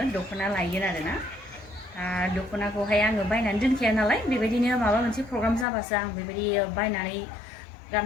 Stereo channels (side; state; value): right; drops out; at 5.7 s